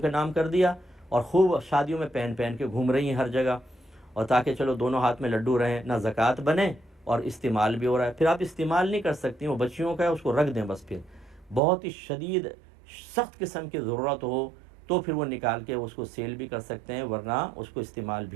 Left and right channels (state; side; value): drops out; left; at 11.6 s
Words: नाम कर दिया और खूब शादियों में पहन पहन के घूम रही हैं हर जगह, और ताकि चलो दोनों हाथ में लड्डू रहें, ना ज़कात बने اور استعمال بھی ہو رہا ہے، پھر آپ استعمال نہیں کر سکتی، وہ بچیوں کا ہے، اس کو رکھ دیں بس. پھر بہت ہی شدید سخت قسم کی ضرورت ہو تو پھر وہ نکال کے اس کو سیل بھی کر سکتے ہیں، ورنہ اس کو استعمال